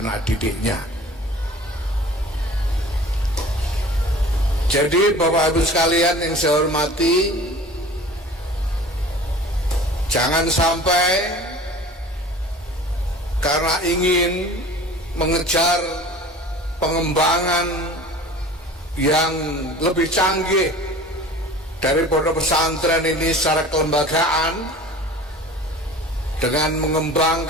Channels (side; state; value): both; normal; correlation 0.42